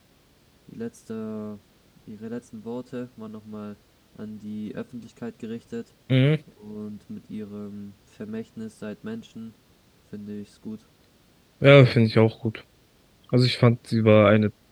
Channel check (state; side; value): identical; both; correlation 1.00